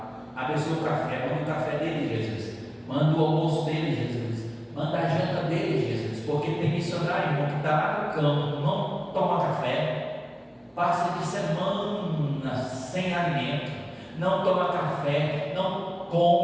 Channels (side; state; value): both; identical; correlation 1.00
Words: Abençoa o café, manda o café dele, Jesus. Manda o almoço dele, Jesus. Manda a janta dele, Jesus. Porque tem missionário, irmão, que está lá no campo, não toma café, passa de semana sem alimento, não toma café, não